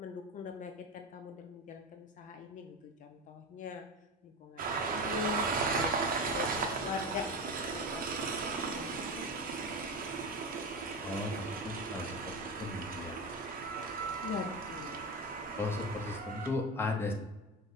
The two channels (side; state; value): both; normal; correlation 0.22